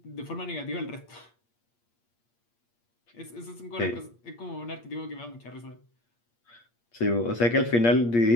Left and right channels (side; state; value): right; late; 8.5 ms